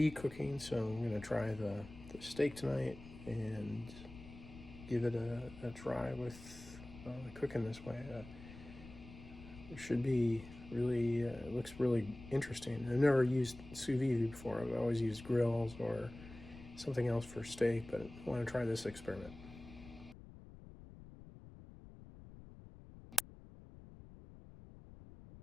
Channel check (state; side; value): noise; left; rumble, 16 dB below the sound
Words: cooking, so I'm going to try the steak tonight and give it a try with cooking this way. It should be really, it looks really interesting. I've never used sous vide before. I've always used grills or something else for steak, but I want to try this experiment.